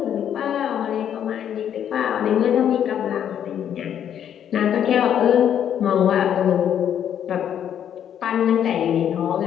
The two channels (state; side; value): quieter; right; 9.5 dB